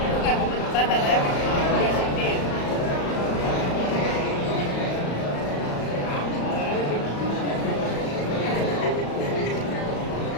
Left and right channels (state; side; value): late; right; 35 ms